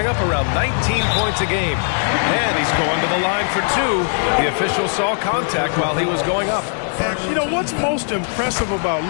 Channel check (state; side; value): silent; right; 66 dB below the other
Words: up around 19 points a game. And he's going to the line for 2. The official saw contact while he was going up. And, you know, what's most impressive about